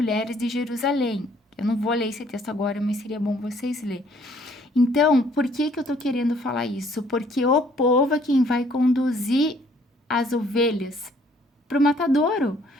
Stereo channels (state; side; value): normal; both; correlation 0.62